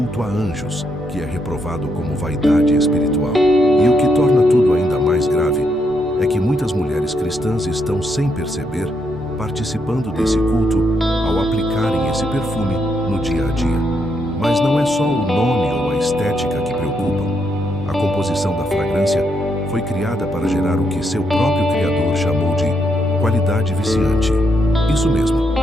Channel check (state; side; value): normal; both; correlation 0.78